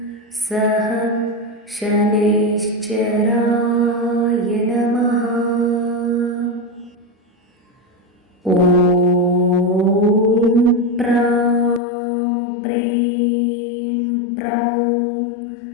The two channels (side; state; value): right; drops out; at 11.8 s